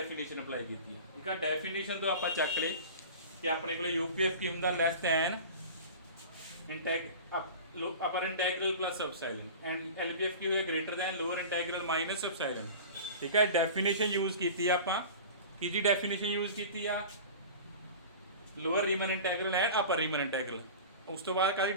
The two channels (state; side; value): inverted; both; correlation -0.35